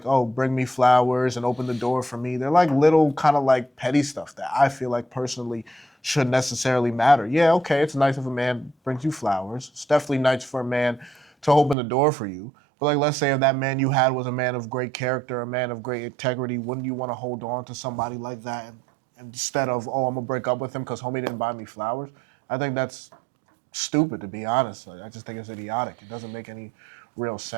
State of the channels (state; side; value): drops out; left; at 11.8 s